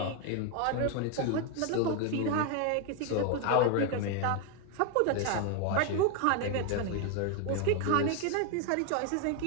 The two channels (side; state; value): both; different; correlation 0.01